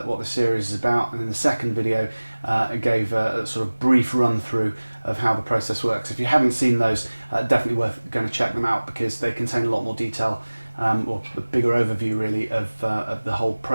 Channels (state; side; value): inverted; both; correlation -1.00